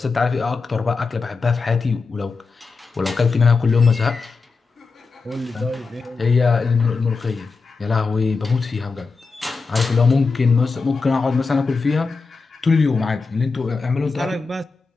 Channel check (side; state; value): right; quieter; 4.4 dB